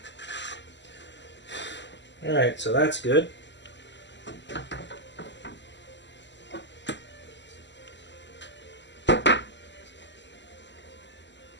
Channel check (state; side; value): late; right; 0.52 ms